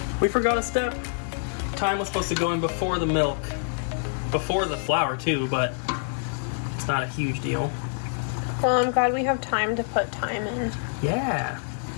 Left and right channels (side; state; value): right; silent; digital silence